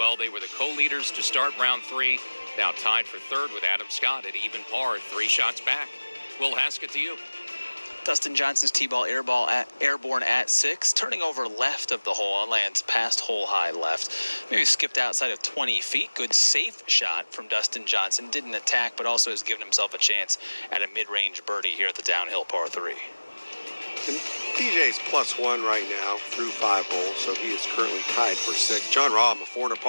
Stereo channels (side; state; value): both; inverted; correlation -1.00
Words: They were the co-leaders to start round 3. Now tied for 3rd with Adam Scott at even par, 3 shots back. Will Haskett to you. Dustin Johnson's tee-ball airborne at 6, turning over left of the hole and lands past hole high left. Maybe skipped outside of 20 feet. Good safe shot from Dustin Johnson. Didn't attack, but also has given himself a chance at a mid-range birdie here at the downhill par 3. And DJ's +1 right now through 5 holes, so he is currently tied for 6. John Rahm, a 4 under